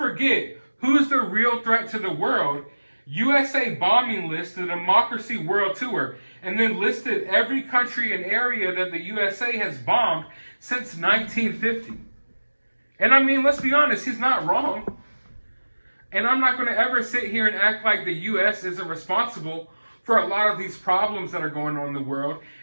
who's the real threat to the world. USA bombing list, the Democracy World Tour," and then listed every country and area that the USA has bombed since 1950. And I mean, let's be honest, he's not wrong. And I'm not going to ever sit here and act like the U.S. isn't responsible for a lot of these problems that are going on in the world.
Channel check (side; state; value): both; inverted; correlation -1.00